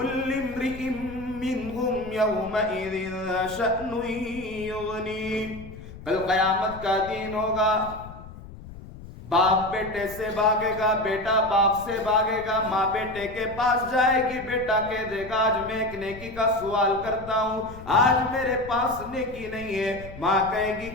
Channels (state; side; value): noise; left; rumble, 15 dB below the sound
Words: امرئ منہم یومئذ شأن یغنیہ۔ کل قیامت کا دن ہوگا، باپ بیٹے سے بھاگے گا، بیٹا باپ سے بھاگے گا، ماں بیٹے کے پاس جائے گی، بیٹا کہہ دے گا آج میں ایک نیکی کا سوال کرتا ہوں، آج میرے پاس نیکی نہیں ہے۔ ماں کہے گی